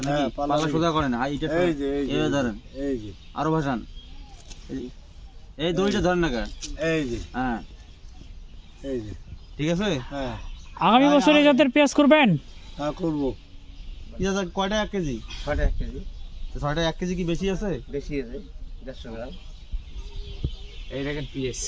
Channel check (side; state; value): both; identical; correlation 1.00